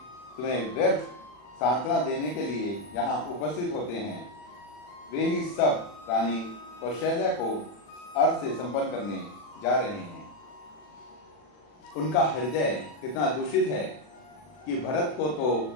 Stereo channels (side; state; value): right; late; 40 ms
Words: तुम्हें व्यर्थ सांत्वना देने के लिए यहाँ उपस्थित होते हैं। वे ही सब रानी कौशल्या को अर्थ से संपन्न करने जा रहे हैं। उनका हृदय इतना दूषित है कि भरत को